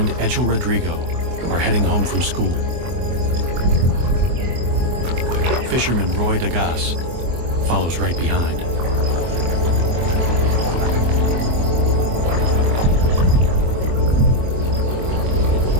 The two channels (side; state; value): left; late; 24 ms